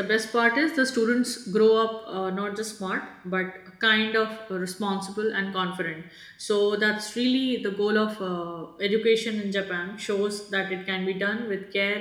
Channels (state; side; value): identical; both; correlation 1.00